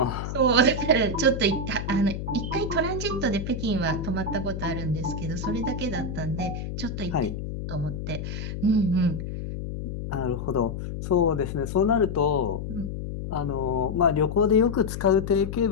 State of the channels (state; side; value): noise; left; hum, 6 dB below the sound